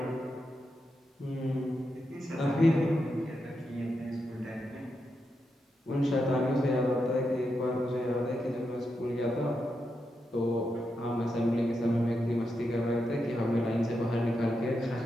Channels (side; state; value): both; normal; correlation 0.85